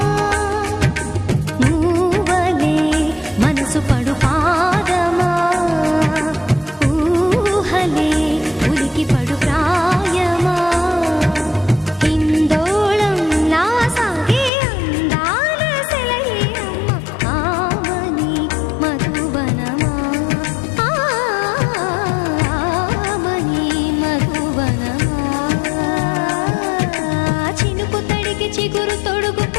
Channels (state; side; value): drops out; right; at 14.5 s